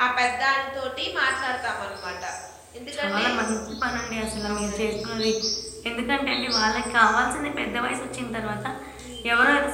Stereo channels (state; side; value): identical; both; correlation 1.00